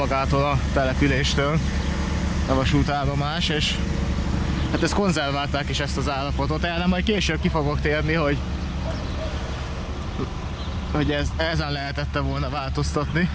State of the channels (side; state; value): both; identical; correlation 1.00